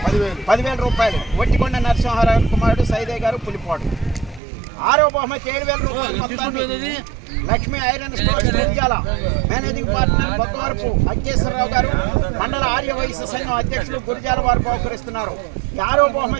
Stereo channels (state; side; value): drops out; left; at 4.4 s